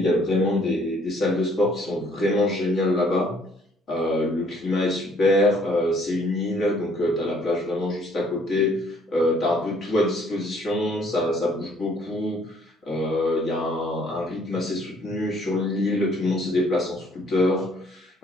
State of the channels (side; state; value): both; normal; correlation 0.62